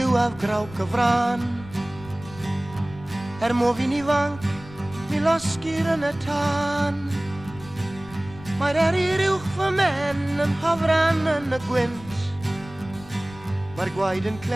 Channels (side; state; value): left; noise; rumble, 18 dB below the sound